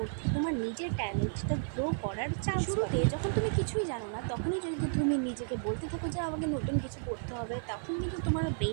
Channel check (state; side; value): silent; left; 56 dB below the other